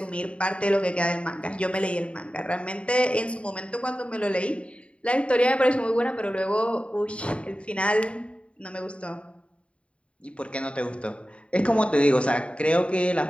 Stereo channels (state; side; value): late; right; 0.060 ms